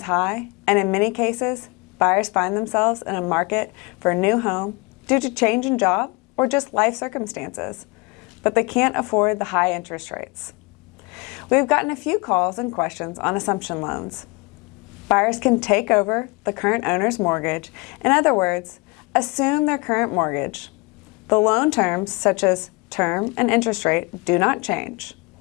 high, and in many cases, buyers find themselves in a market for a new home due to change in job or just life circumstances, but they can't afford the high interest rates. We've gotten a few calls and questions on assumption loans. Buyers can take over the current owner's mortgage, in other words, assume their current mortgage. The loan terms, such as term and interest rate, do not change.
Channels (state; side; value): quieter; right; 27.5 dB